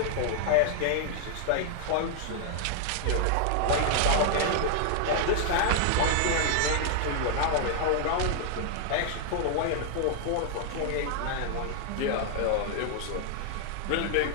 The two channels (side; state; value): both; different; correlation 0.00